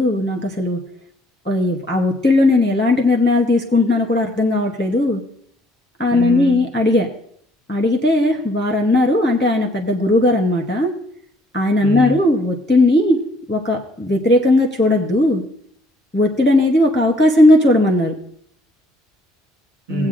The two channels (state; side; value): normal; both; correlation 0.64